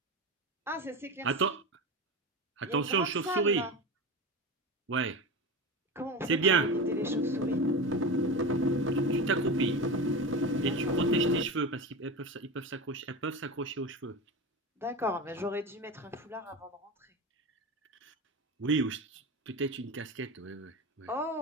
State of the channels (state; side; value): normal; both; correlation 0.24